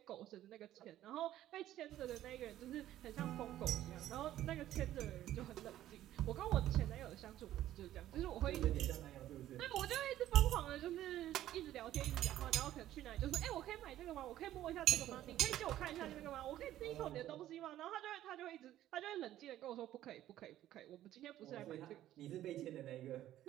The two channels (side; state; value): left; quieter; 13.1 dB